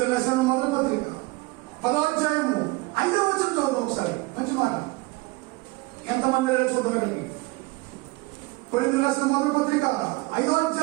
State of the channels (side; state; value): left; quieter; 23.1 dB